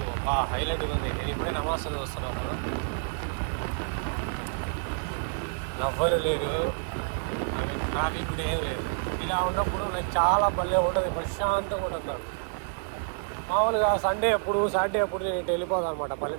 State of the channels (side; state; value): left; silent; 59 dB below the other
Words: హైలైట్గా ఉంది. నేను ఇప్పుడే నమాజ్ వస్తున్నాను కదా, నవ్వలు లేదు, ట్రాఫిక్ కూడా ఏం లేదు. ఇలా ఉన్నప్పుడు నాకు చాలా భలే ఉంటుంది, ప్రశాంతంగా ఉంటుంది. మామూలుగా సాటర్డే అప్పుడు నేను ఇటు వెళ్ళిపోతాను అనమాట